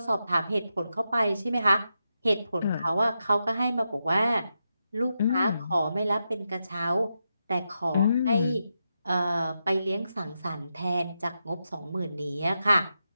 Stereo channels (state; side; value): inverted; both; correlation -0.86